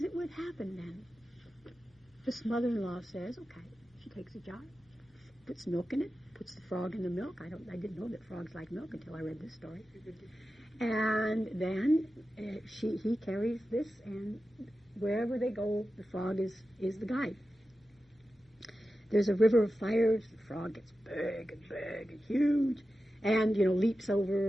it would happen then, this mother-in-law says, okay, she takes a jar, puts milk in it, puts the frog in the milk. I didn't know that frogs like milk until I read this story. And then he carries this, and wherever they go, the frog is the guide. There's a river of fires. The frog gets big and huge, and leaps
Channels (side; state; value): both; normal; correlation 0.93